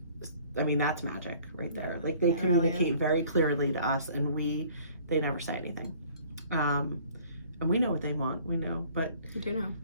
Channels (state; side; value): inverted; both; correlation -0.54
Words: I mean, that's magic right there. Like, they communicate very clearly to us, and they never say anything. And we know what they want. We know, but you do know.